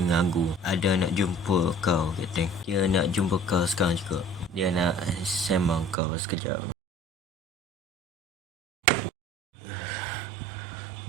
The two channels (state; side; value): drops out; left; at 6.0 s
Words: Ada nak jumpa kau, Kapten. Dia nak jumpa kau sekarang juga. Dia nak sembang kau sekejap.